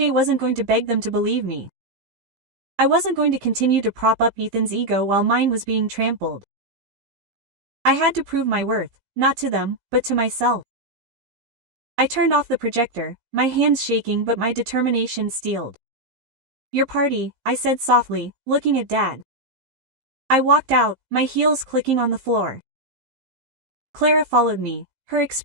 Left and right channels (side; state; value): left; late; 15 ms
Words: wasn't going to beg them to believe me. I wasn't going to continue to prop up Ethan's ego while mine was being trampled. I had to prove my worth, not to them, but to myself. I turned off the projector, my hands shaking but my determination steeled. "Your party," I said softly, looking at Dad. I walked out, my heels clicking on the floor. Clara followed me, her